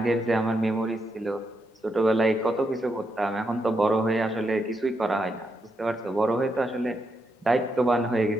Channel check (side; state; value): both; normal; correlation 0.82